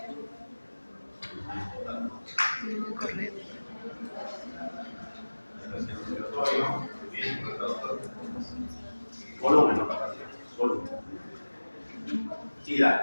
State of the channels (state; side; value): inverted; both; correlation -1.00